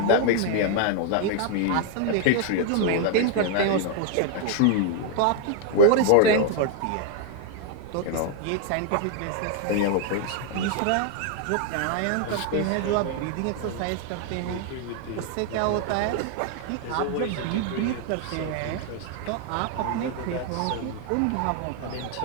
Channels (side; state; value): both; different; correlation 0.00